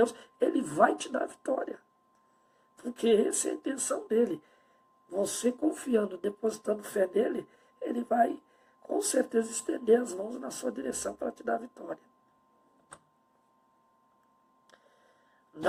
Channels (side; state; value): both; identical; correlation 1.00